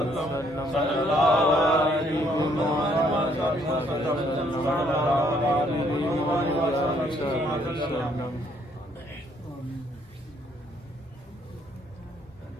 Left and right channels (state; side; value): normal; both; correlation 0.67